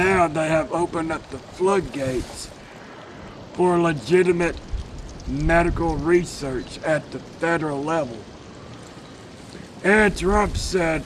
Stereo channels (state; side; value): identical; both; correlation 1.00